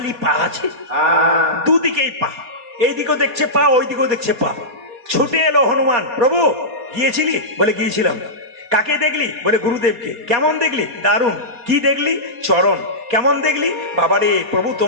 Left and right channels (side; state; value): left; late; 4.2 ms